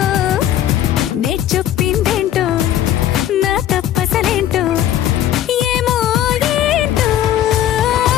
నే చెప్పిందేంటో నా తప్పసలేంటో ఏమో ఏంటో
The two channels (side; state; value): right; quieter; 11.6 dB